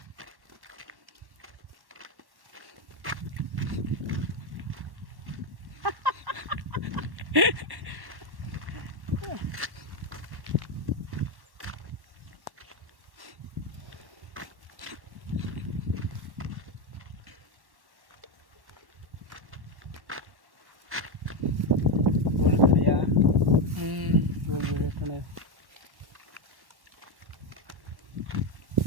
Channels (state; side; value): late; left; 1.1 ms